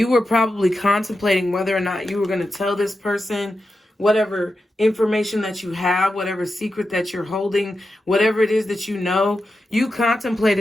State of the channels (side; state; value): both; normal; correlation 0.90